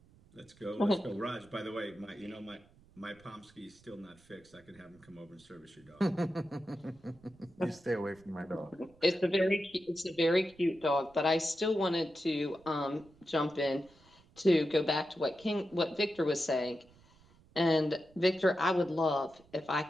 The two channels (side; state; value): right; noise; rumble, 28 dB below the sound